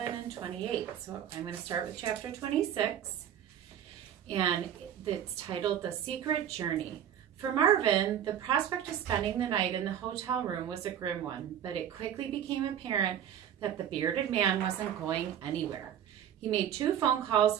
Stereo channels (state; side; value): quieter; left; 9.7 dB